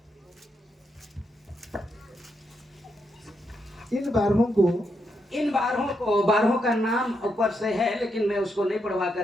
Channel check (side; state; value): both; normal; correlation 0.81